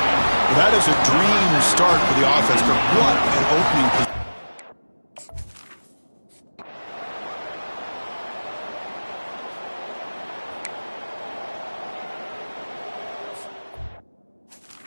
That is a dream start for the offense, but what an opening position.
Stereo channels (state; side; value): inverted; both; correlation -1.00